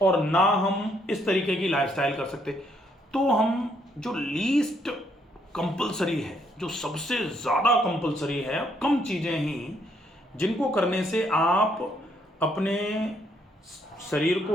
और ना हम इस तरीके की लाइफस्टाइल कर सकते। तो हम जो लीस्ट कंपलसरी है, जो सबसे ज़्यादा कंपलसरी है, कम चीज़ें ही जिनको करने से आप अपने शरीर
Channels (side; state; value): both; normal; correlation 0.71